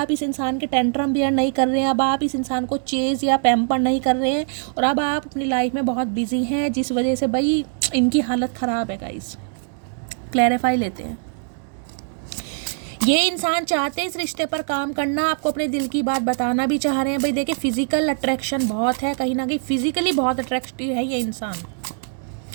इस इंसान के टेंट्रम बियर नहीं कर रहे हैं, अब आप इस इंसान को चेज या पैम्पर नहीं कर रहे हैं, और अब आप अपनी लाइफ में बहुत बिजी हैं, जिस वजह से भाई इनकी हालत ख़राब है गाइस। क्लैरिफाई लेते हैं। ये इंसान चाहते हैं इस रिश्ते पर काम करना, आपको अपने दिल की बात बताना भी चाह रहे हैं। भाई देखिए फिजिकल अट्रैक्शन बहुत है, कहीं ना कहीं फिजिकली बहुत अट्रैक्टिव है ये इंसान,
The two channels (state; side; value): silent; left; 64 dB below the other